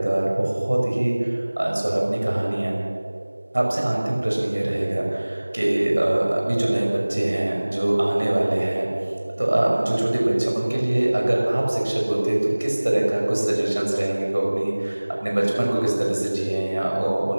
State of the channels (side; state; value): both; inverted; correlation -1.00